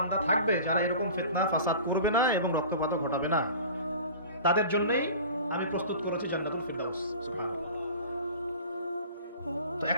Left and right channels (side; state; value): both; inverted; correlation -0.40